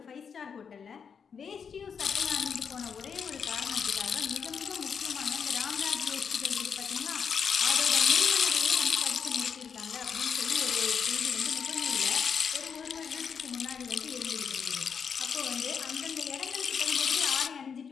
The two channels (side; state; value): right; quieter; 6.6 dB